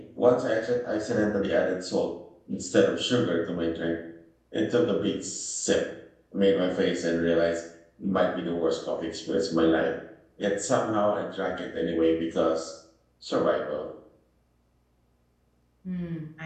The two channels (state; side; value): identical; both; correlation 1.00